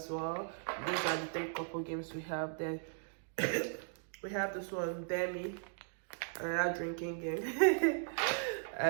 well. These are the 3 couple games we have. Then we have this one, Demi, another drinking game.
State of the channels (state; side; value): silent; left; digital silence